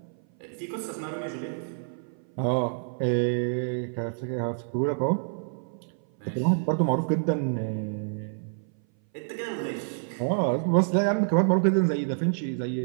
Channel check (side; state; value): left; silent; 57 dB below the other